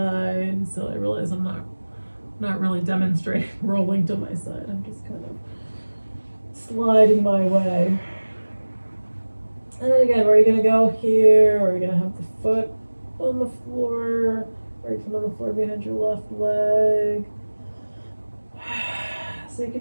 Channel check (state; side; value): inverted; both; correlation -1.00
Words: So I realize I'm not really demonstrating rolling to my side. I'm just kind of sliding my way. And then again, where are you gonna go here? Or are you gonna have the foot on the floor, right foot on the floor behind your left leg? So you